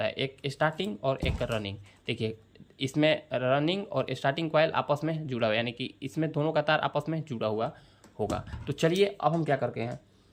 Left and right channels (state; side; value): identical; both; correlation 1.00